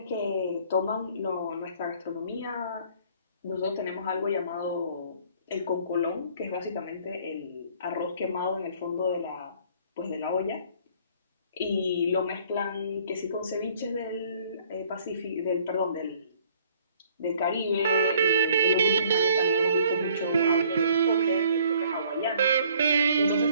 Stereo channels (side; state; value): both; inverted; correlation -0.58